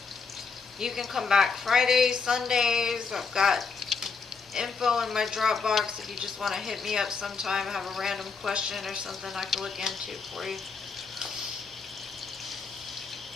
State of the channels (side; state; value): right; quieter; 5.0 dB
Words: You can come back Fridays, Sundays. I've got info in my Dropbox if you just want to hit me up sometime, have a random question or something I can look into for you.